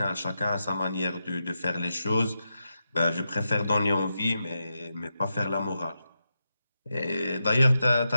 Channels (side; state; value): both; inverted; correlation -0.87